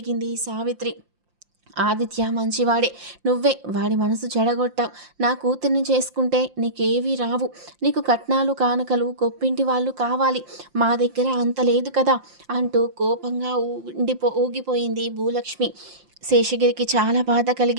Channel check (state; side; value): late; left; 5.7 ms